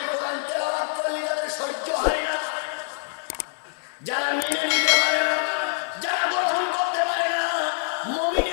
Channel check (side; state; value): right; silent; digital silence